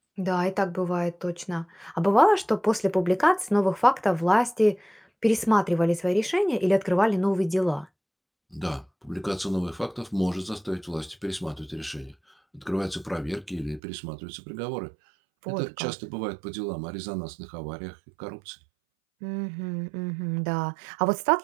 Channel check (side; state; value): left; drops out; at 13.8 s